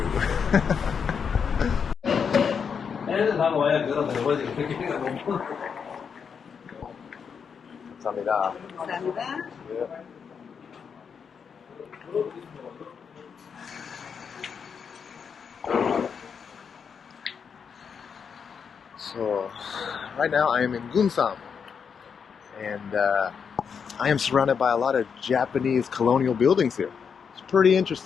감사합니다. 감사합니다. So, right now I am in Gunsan, and I am surrounded by a lot of Japanese colonial buildings here. It's pretty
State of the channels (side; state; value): right; quieter; 6.5 dB